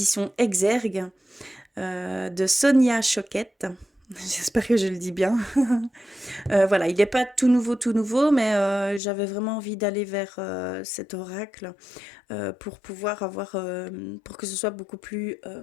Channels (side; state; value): right; drops out; at 9.0 s